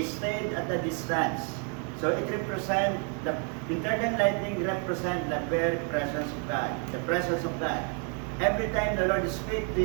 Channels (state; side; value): quieter; left; 40.0 dB